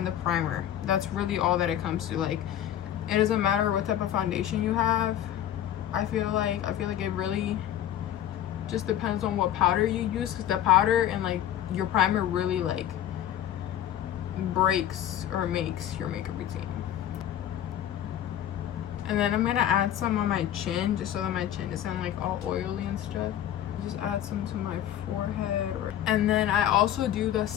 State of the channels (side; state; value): right; quieter; 11.3 dB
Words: the primer. That's really all that it comes to. Like, it doesn't matter what type of foundation you have. I feel like it really just depends on what powder you use, because the powder and like your primer really like breaks or makes your makeup routine. And then I'm gonna add some on my chin, just so that my chin isn't like all oily and stuff. Just add some to my forehead. And then I also do the